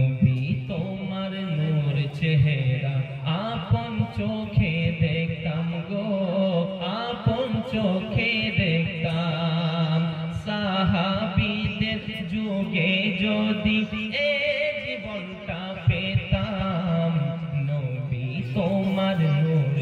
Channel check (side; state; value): both; identical; correlation 1.00